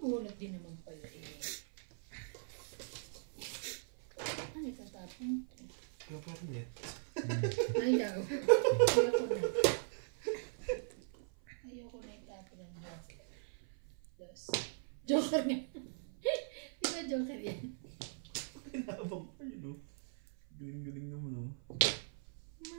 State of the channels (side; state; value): left; silent; 51 dB below the other